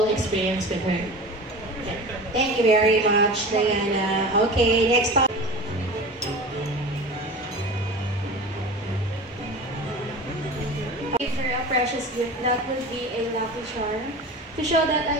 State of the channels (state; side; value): normal; both; correlation 0.33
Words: experience with her. Okay. Thank you very much, Diana. Okay, next time. Give her a precious gift that would be a lucky charm to show that